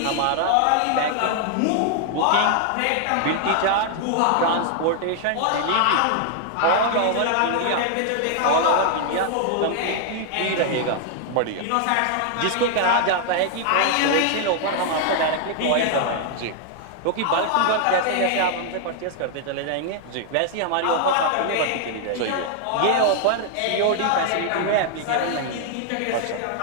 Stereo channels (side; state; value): both; different; correlation 0.00